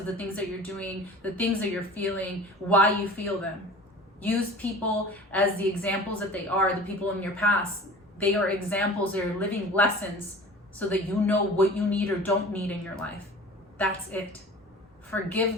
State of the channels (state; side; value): normal; both; correlation 0.40